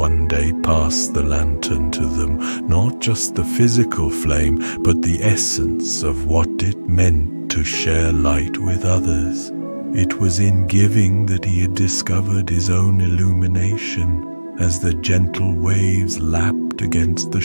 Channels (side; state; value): both; inverted; correlation -1.00